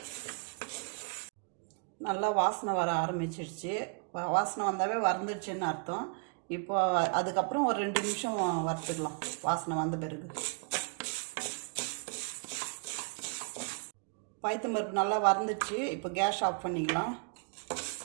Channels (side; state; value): left; quieter; 39.2 dB